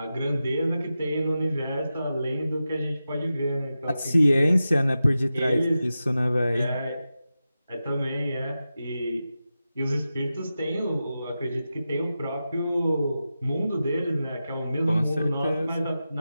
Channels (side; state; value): both; inverted; correlation -0.92